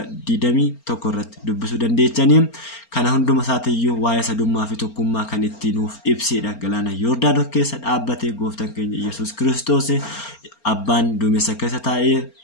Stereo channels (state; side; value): late; right; 4.4 ms